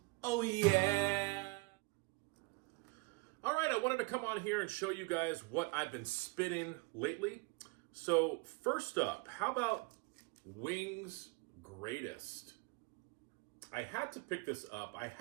Oh yeah! All right, I wanted to come on here and show you guys what I've been spinning lately. So first up, how about Wings Greatest? I had to pick this up. I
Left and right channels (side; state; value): left; quieter; 26.5 dB